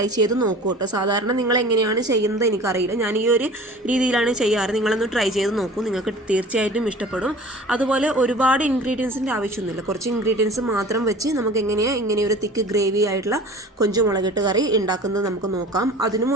ചെയ്ത് നോക്കൂ കേട്ടോ. സാധാരണ നിങ്ങൾ എങ്ങനെയാണ് ചെയ്യുന്നത് എനിക്കറിയില്ല, ഞാൻ ഈ ഒരു രീതിയിലാണ് ചെയ്യാറ്. നിങ്ങളൊന്ന് ട്രൈ ചെയ്ത് നോക്കൂ, നിങ്ങൾക്ക് തീർച്ചയായിട്ടും ഇഷ്ടപ്പെടും. അതുപോലെ ഒരുപാട് ഇൻഗ്രീഡിയൻസിൻ്റെ ആവശ്യമൊന്നുമില്ല, കുറച്ച് ഇൻഗ്രീഡിയൻസ് മാത്രം വെച്ച് നമുക്ക് എങ്ങനെയാണ് ഇങ്ങനെ ഒരു തിക്ക് ഗ്രേവി ആയിട്ടുള്ള കൊഞ്ച് മുളകിട്ട് കറി ഉണ്ടാക്കുന്നത് നമുക്ക് നോക്കാം. അതിനു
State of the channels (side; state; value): both; normal; correlation 0.42